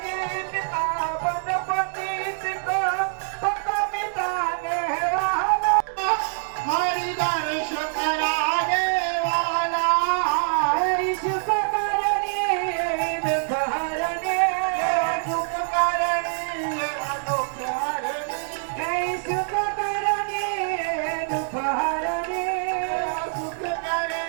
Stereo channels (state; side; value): silent; left; digital silence